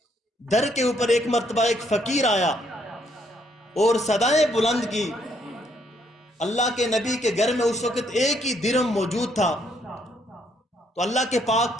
در کے اوپر ایک مرتبہ ایک فقیر آیا اور صدائیں بلند کی۔ اللہ کے نبی کے گھر میں اس وقت ایک ہی درہم موجود تھا، تو اللہ کے پاک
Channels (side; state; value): both; normal; correlation 0.70